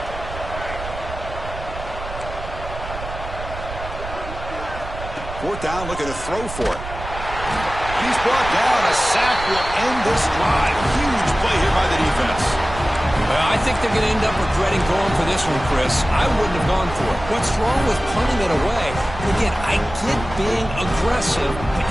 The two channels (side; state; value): right; noise; rumble, 10 dB below the sound